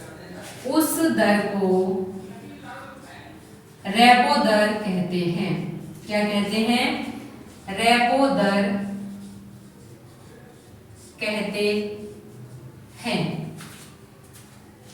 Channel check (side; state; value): both; identical; correlation 1.00